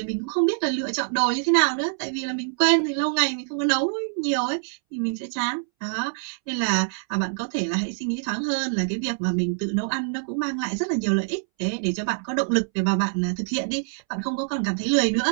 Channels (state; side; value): silent; left; 62 dB below the other